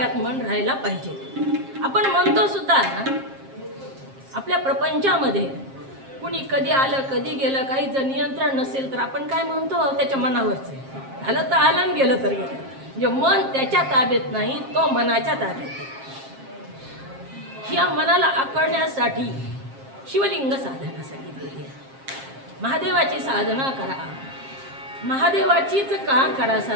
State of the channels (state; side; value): late; left; 7.5 ms